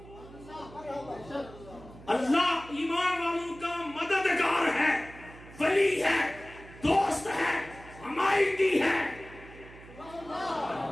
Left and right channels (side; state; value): right; noise; hum, 19 dB below the sound